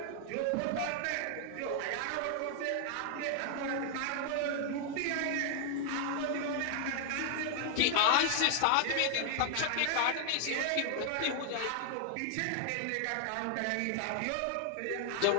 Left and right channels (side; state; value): both; different; correlation 0.00